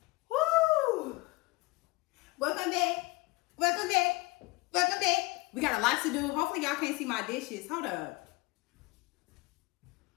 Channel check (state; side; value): quieter; right; 23.4 dB